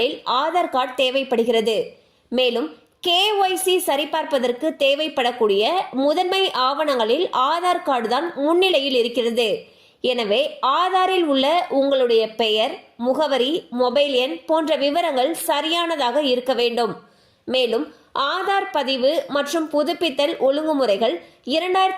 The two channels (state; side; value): identical; both; correlation 1.00